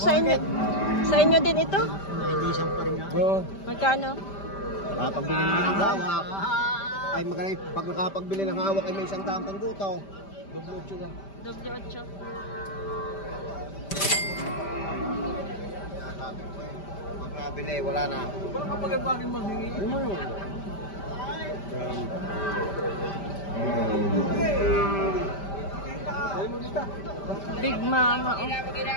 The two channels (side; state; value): right; late; 5.1 ms